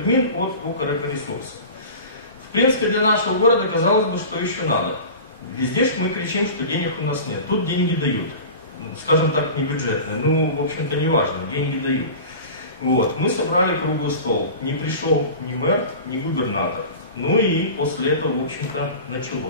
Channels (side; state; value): both; inverted; correlation -0.35